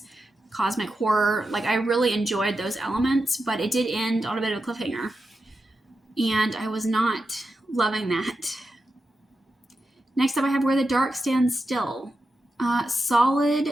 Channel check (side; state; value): both; normal; correlation 0.89